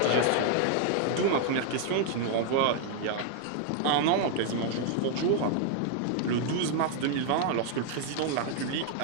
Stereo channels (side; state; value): both; different; correlation 0.00